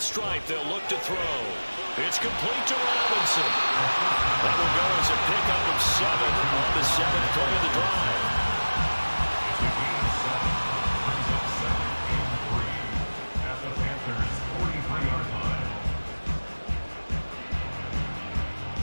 they'll look to throw. It's complete to Robinson. That will go as a pickup of 7 on the 7th play of the drive.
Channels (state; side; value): inverted; both; correlation -1.00